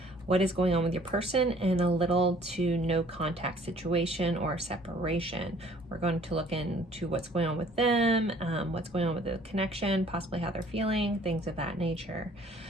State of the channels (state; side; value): normal; both; correlation 0.56